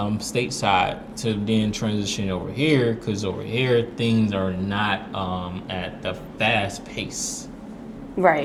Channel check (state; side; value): identical; both; correlation 1.00